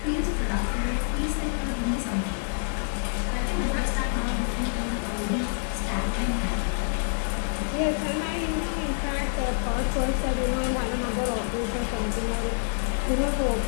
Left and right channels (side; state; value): right; silent; 60 dB below the other